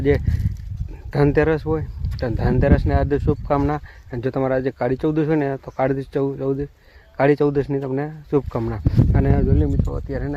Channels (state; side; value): identical; both; correlation 1.00